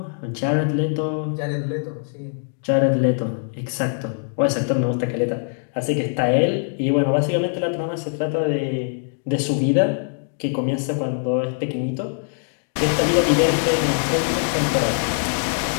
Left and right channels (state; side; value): silent; right; digital silence